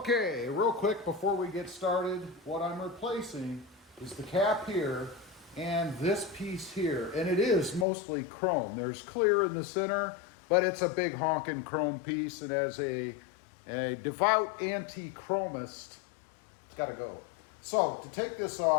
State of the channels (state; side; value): drops out; right; at 7.9 s